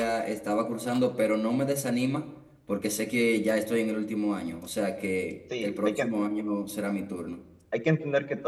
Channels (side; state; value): both; identical; correlation 1.00